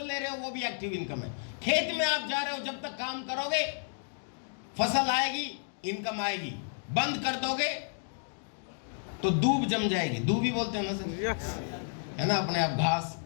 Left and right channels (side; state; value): right; silent; digital silence